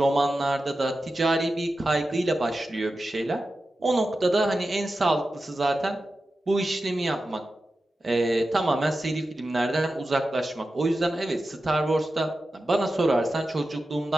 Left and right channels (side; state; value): both; normal; correlation 0.92